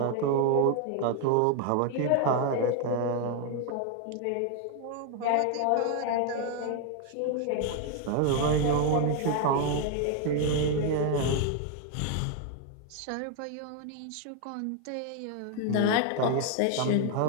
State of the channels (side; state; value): both; different; correlation 0.01